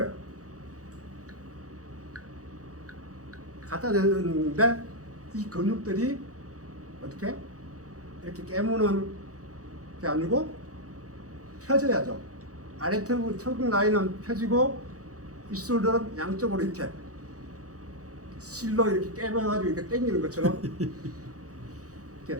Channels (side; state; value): left; late; 0.66 ms